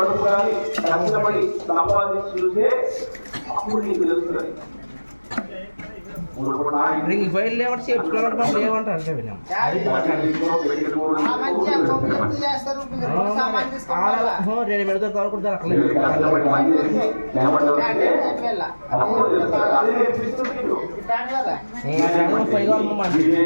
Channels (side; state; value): both; inverted; correlation -1.00